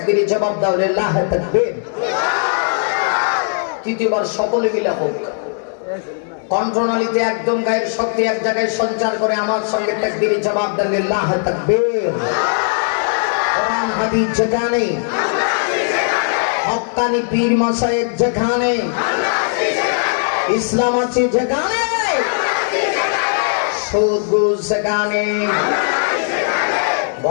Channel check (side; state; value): right; silent; 64 dB below the other